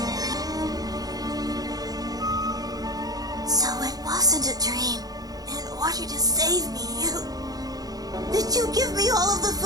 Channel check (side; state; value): left; late; 0.18 ms